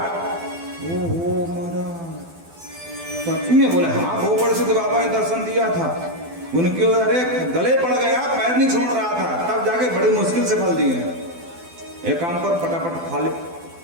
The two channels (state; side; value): late; left; 12 ms